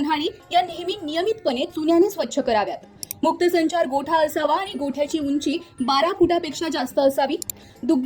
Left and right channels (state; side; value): identical; both; correlation 1.00